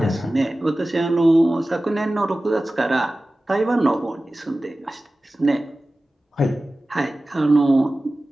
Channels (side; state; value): both; normal; correlation 0.96